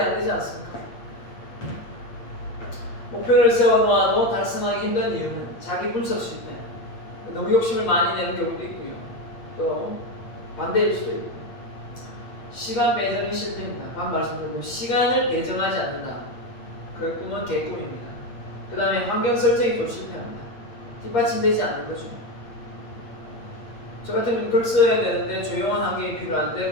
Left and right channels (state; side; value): late; right; 8.5 ms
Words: 안 되지 않습니까? 목표를 세워놓아도 달성하기 힘든 이유는 자기 분석 실패, 너무 욕심을 많이 내는 경우도 있고요. 또 반대일 수도 있고 시간 배정이 실패입니다. 방금 말씀드린 시간을 배정하지 않는다. 그 꿈은 개꿈입니다. 그 다음에 환경 설정이 또 실패합니다. 뒷받침되지 않는 거죠. 저 같은 경우는 글 써야 되는데 조용한 환경이 필요한데